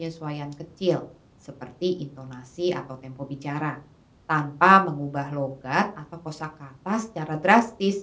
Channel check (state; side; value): identical; both; correlation 1.00